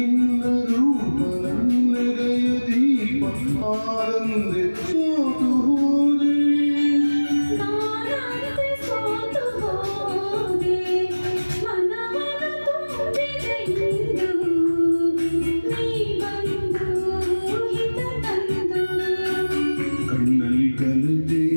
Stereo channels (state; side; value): inverted; both; correlation -1.00